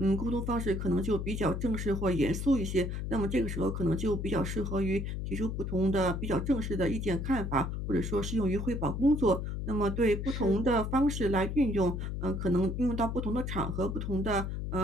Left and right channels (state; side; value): noise; left; hum, 3 dB below the sound